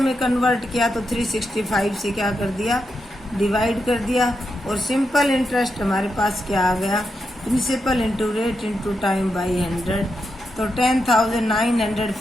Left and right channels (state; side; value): normal; both; correlation 0.85